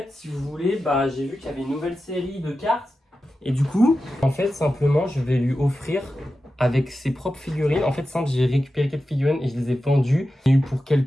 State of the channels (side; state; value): both; normal; correlation 0.92